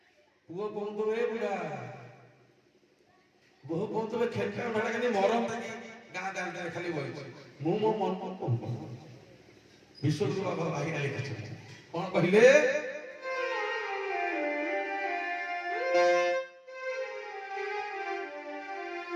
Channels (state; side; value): identical; both; correlation 1.00